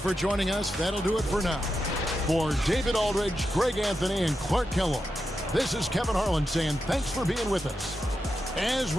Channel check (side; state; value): both; normal; correlation 0.88